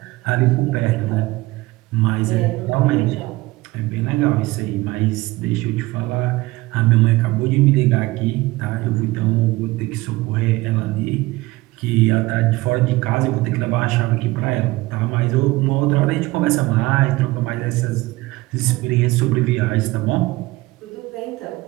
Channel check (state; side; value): quieter; left; 20.2 dB